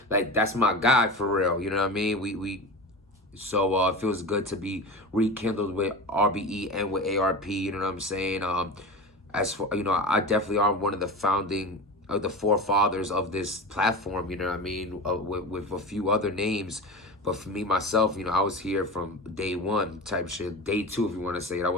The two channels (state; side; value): normal; both; correlation 0.28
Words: Like, that's my guy for real. You know what I mean? So it feels good to be rekindled with RBE and with ARP. You know what I'm saying? As for, you know, I definitely are one of the founding of the forefathers of this platform. You know what I mean? With a few other names. But for me, myself, you know, I was here from day one type shit. Day two, if you want to say it. I